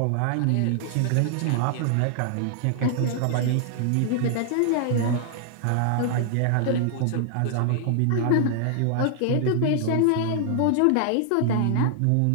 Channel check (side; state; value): both; different; correlation 0.00